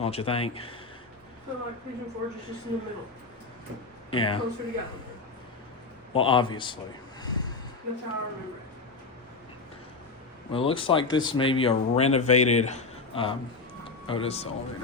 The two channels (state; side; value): quieter; right; 4.0 dB